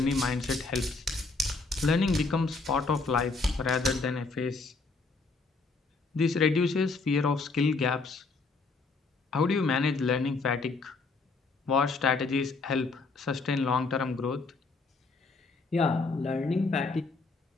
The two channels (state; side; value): quieter; right; 3.9 dB